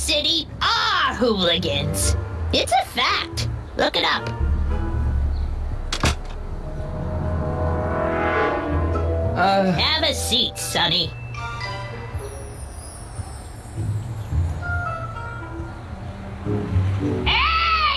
are hooligans. It's a fact. Look it up. Have a seat, Sonny.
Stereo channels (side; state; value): both; identical; correlation 1.00